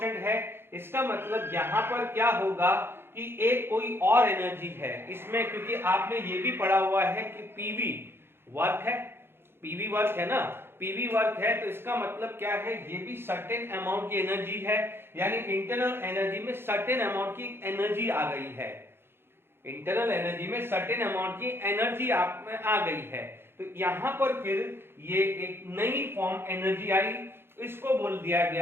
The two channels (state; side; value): late; left; 0.11 ms